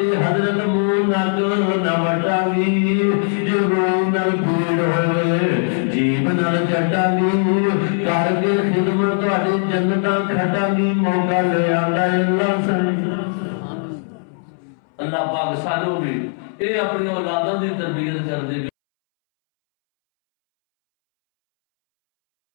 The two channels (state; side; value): silent; right; 66 dB below the other